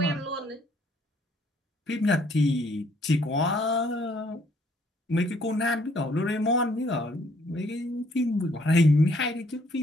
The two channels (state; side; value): normal; both; correlation 0.65